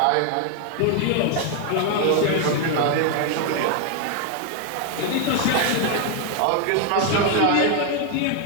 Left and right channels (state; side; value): different; both; correlation 0.00